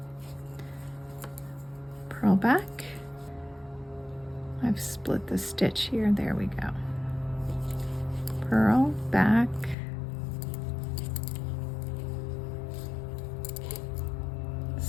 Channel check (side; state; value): right; drops out; at 9.8 s